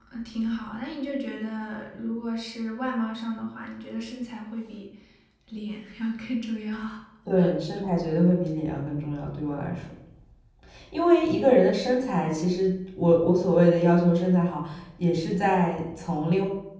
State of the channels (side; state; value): both; identical; correlation 1.00